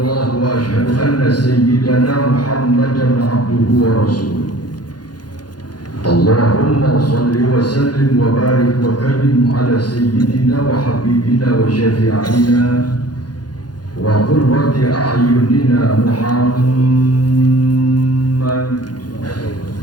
wa ashhadu anna sayyidana Muhammadan abduhu wa rasuluh. Allahumma salli wa sallim wa barik wa karim ala sayyidina wa habibina wa syafi'ina wa qurrati a'yunina Muhammad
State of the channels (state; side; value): late; right; 0.70 ms